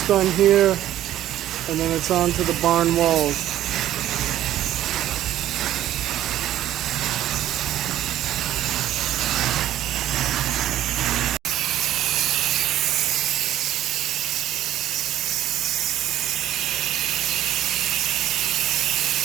done here, and then it's on to the barn walls.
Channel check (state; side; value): quieter; left; 12.8 dB